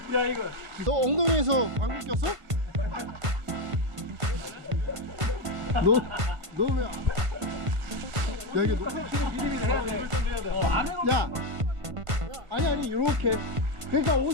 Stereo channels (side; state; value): left; late; 1.5 ms